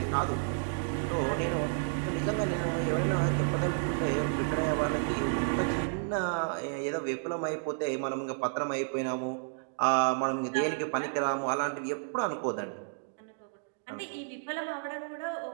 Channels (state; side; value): silent; left; digital silence